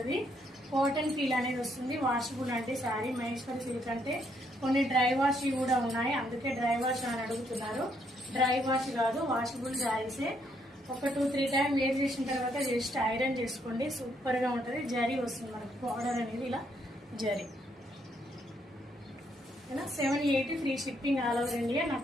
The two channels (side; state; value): both; normal; correlation 0.73